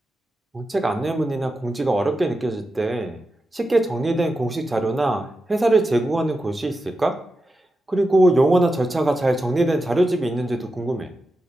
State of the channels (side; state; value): both; normal; correlation 0.90